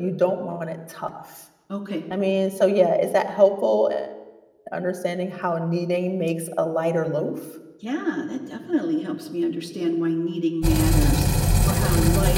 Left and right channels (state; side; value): identical; both; correlation 1.00